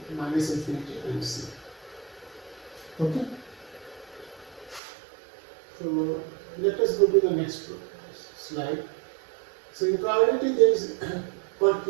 minus infinity and c. Okay? So let us go to the next slide. So in probability there is called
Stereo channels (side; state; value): left; drops out; at 4.8 s